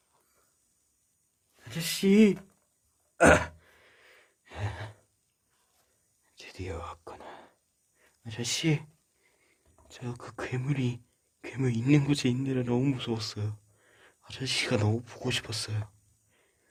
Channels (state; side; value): identical; both; correlation 1.00